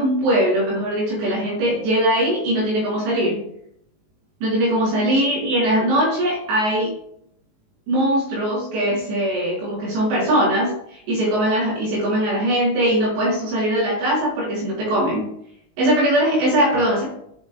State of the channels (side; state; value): left; late; 19 ms